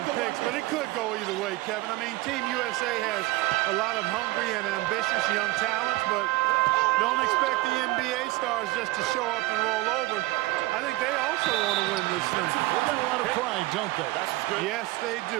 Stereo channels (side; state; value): left; quieter; 19.9 dB